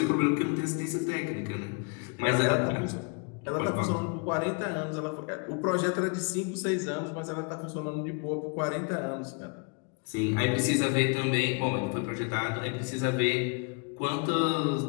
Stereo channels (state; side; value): quieter; right; 35.0 dB